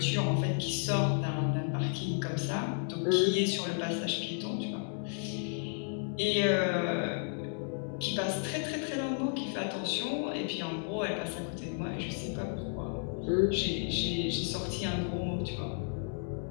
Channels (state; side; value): silent; right; 56 dB below the other